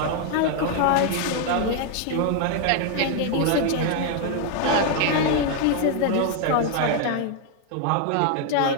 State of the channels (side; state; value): both; different; correlation 0.00